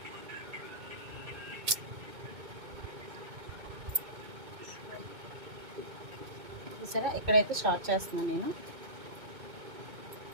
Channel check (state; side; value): late; left; 2.2 ms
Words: చూసారా, ఇక్కడైతే స్టార్ట్ చేస్తున్నాను నేను.